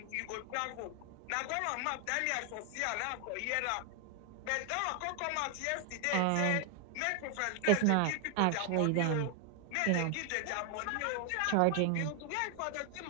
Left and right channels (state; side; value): different; both; correlation 0.00